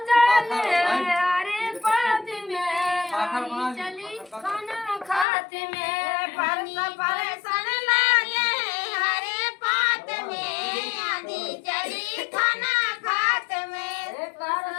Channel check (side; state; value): right; drops out; at 5.2 s